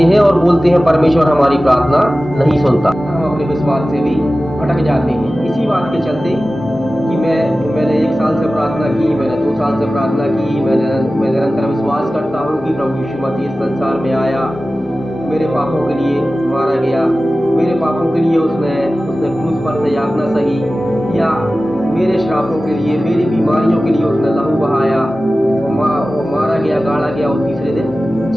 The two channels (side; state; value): both; normal; correlation 0.95